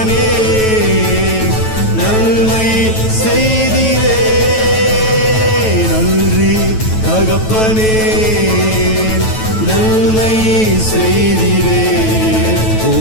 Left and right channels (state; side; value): late; right; 9.2 ms